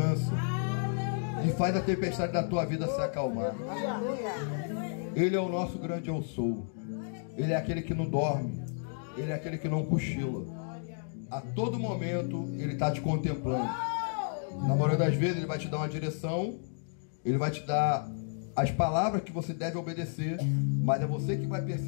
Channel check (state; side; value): silent; right; digital silence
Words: e faz a tempestade da tua vida se acalmar. Ele é o nosso grande eu sou. Ele é aquele que não dorme. Ele é aquele que não cochila. A todo momento ele está te contemplando. Na maioria das vezes ele vai te dar uma direção, ele vai te dar as palavras que você deve obedecer, mas é você que vai